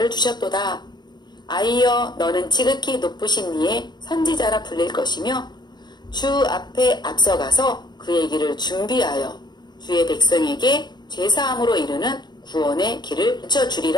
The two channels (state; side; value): late; right; 0.21 ms